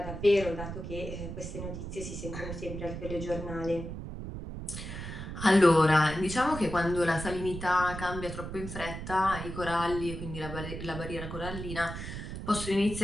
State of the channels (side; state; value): right; noise; rumble, 7 dB below the sound